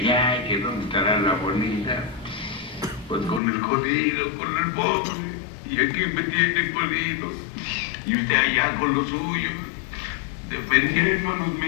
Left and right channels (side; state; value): right; drops out; at 3.4 s